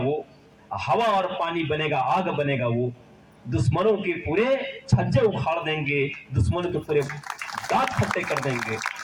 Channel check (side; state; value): both; identical; correlation 1.00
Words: हवा और पानी बनेगा, आग बनेगा वो, दुश्मनों के पूरे छज्जे उखाड़ देंगे, दुश्मनों के पूरे दांत खट्टे कर देंगे।